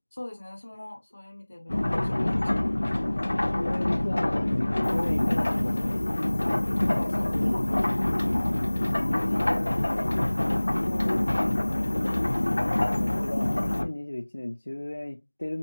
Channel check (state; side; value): inverted; both; correlation -1.00